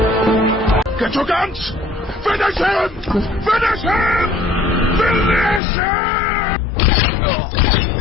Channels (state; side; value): drops out; right; at 5.6 s